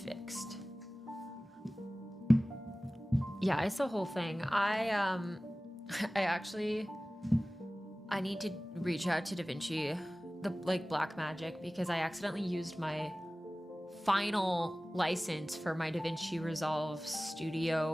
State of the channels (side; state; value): both; normal; correlation 0.97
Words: Fixed. Yeah, it's the whole thing. I need to reach out to DaVinci, the Black Magic, because I accidentally used my final license for my DaVinci Resolve